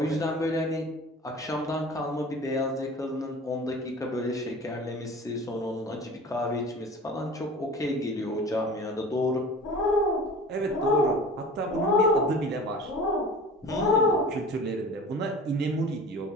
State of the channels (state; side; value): normal; both; correlation 0.39